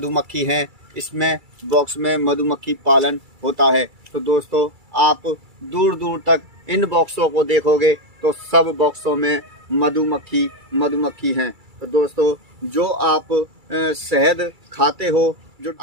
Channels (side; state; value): left; late; 2.3 ms